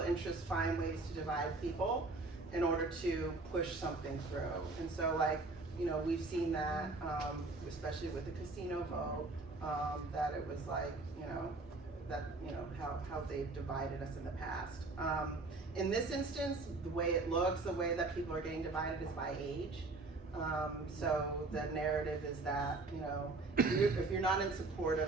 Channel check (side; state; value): left; quieter; 3.4 dB